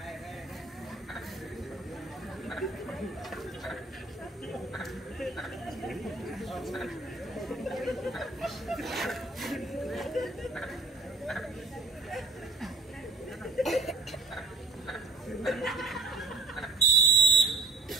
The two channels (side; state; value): left; quieter; 3.2 dB